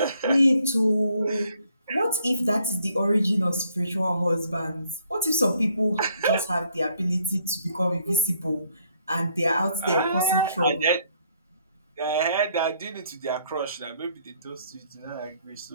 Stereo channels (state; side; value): inverted; both; correlation -0.68